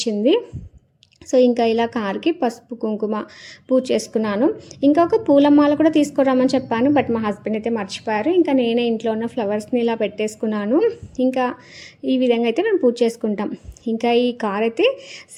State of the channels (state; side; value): identical; both; correlation 1.00